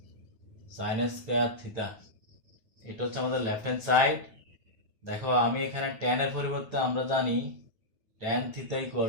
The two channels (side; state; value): left; late; 9.3 ms